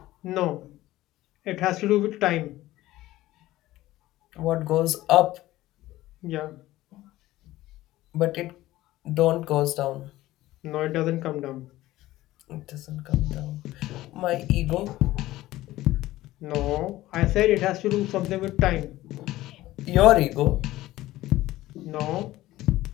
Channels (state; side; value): quieter; right; 16.3 dB